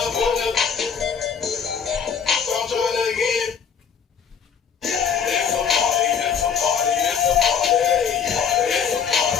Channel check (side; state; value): right; quieter; 7.1 dB